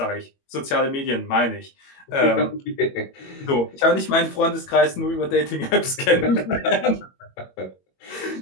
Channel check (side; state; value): right; late; 21 ms